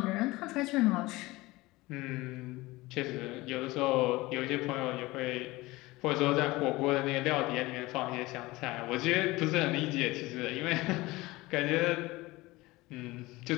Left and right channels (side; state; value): right; quieter; 20.4 dB